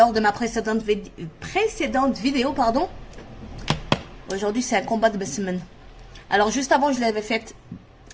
de ma précédente vidéo, pardon, aujourd'hui c'est un combat de semaine. Alors juste avant, je l'avais faite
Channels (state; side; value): identical; both; correlation 1.00